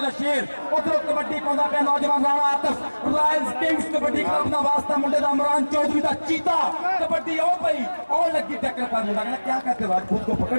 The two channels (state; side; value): inverted; both; correlation -1.00